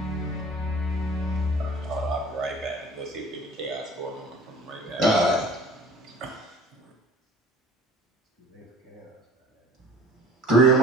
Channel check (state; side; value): normal; both; correlation 0.47